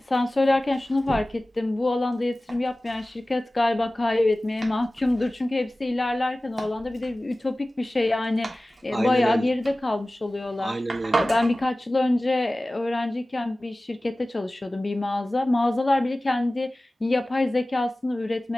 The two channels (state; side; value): normal; both; correlation 0.97